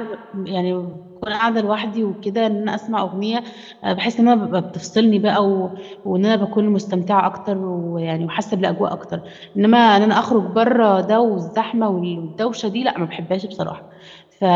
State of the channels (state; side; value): identical; both; correlation 1.00